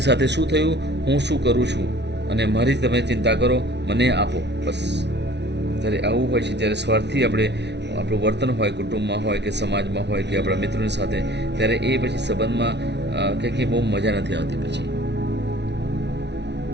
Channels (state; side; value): late; left; 0.50 ms